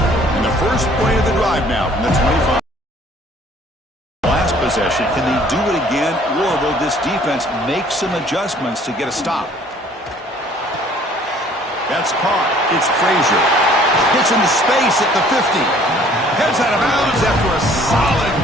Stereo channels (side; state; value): both; normal; correlation 0.56